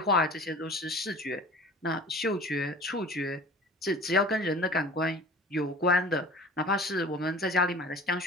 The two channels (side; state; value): both; normal; correlation 0.42